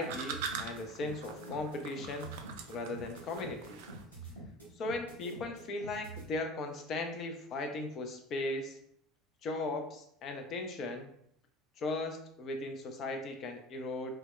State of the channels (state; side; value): normal; both; correlation 0.38